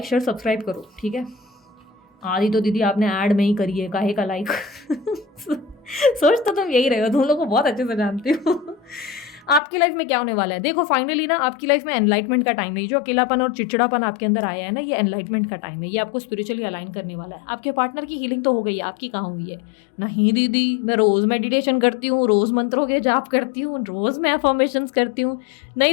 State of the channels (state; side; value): drops out; right; at 9.6 s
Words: शेयर सब्सक्राइब करो, ठीक है। आधी तो दीदी आपने ऐड में ही करी है, काहे का लाइक सोच तो तुम यही रहे हो, तुम लोग को बहुत अच्छे से जानती हो। आपकी लाइफ में क्या होने वाला है देखो, फाइनली ना आपकी लाइफ में एनलाइटमेंट का टाइम है। जो अकेलापन और चिड़चिड़ापन आपके अंदर आया है ना, ये एनलाइटमेंट का टाइम है। ये आपको स्पिरिचुअली अलाइन करने वाला है। आपके पार्टनर की हीलिंग तो हो गई है, आपकी कहाँ हुई है? नहीं दीदी, मैं रोज़ मेडिटेशन करती हूँ, रोज़ मंत्रों के जाप करती हूँ, रोज़ मैं अफर्मेशंस करती हूँ।